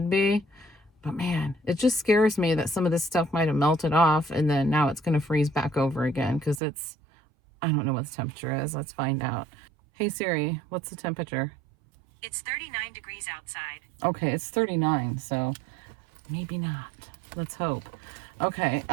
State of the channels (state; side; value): drops out; left; at 6.6 s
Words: be, but man, it just scares me that some of this stuff might have melted off and then now it's going to freeze back over again because I don't know what the temperature is. Let's find out. Hey Siri, what's the temperature? It's 39 degrees outside. Okay, it's 39, so maybe not. Let's hope. Okay,